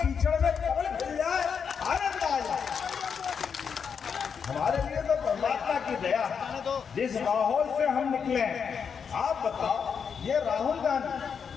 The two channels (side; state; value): right; quieter; 6.6 dB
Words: में कमल खिल जाए, आनंद आ जाए। हमारे लिए तो परमात्मा की दया, जिस माहौल से हम निकले हैं। आप बताओ, ये राहुल गांधी